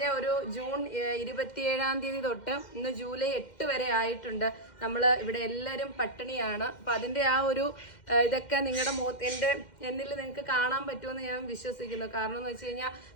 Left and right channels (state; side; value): late; right; 2.1 ms